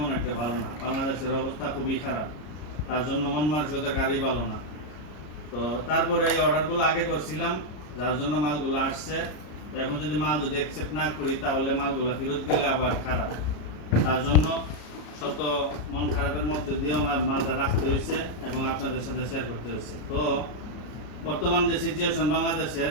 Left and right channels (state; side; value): late; right; 33 ms